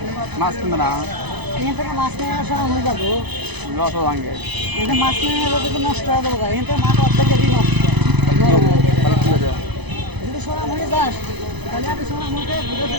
মাছ কিনবে না এখান থেকে মাছ নেওয়ার সময় হয়ে যাবো। লস ভাঙে এখানে মাছ নিয়ে গেলে কিন্তু নষ্ট হয়ে যাবো। এখান থেকে মাছ অর্ধেকেরই নষ্ট। তাহলে কি হবে যদি সোনা হয়ে যাস তাহলে আপনি সোনা মুখে ঘুরে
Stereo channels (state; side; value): late; left; 0.99 ms